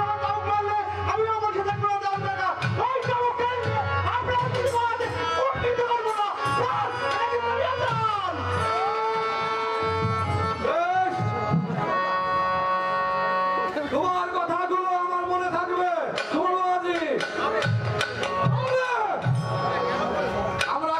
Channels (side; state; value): both; identical; correlation 1.00